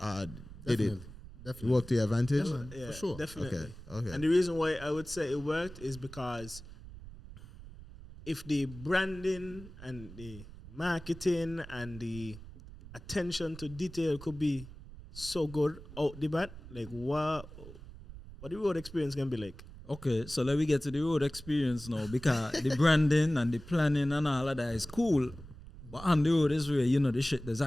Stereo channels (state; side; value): noise; right; rumble, 16 dB below the sound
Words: Did it Definitely. work to your advantage? Yeah, for sure. Definitely. Okay. And the reason why I would say it worked is because if the branding and the marketing and the attention to detail could be so good out the bat, like what the road experience can be like. Okay, so let me get to the road experience now, because the branding and the planning and all of that is cool. But on the road is where, the shit that's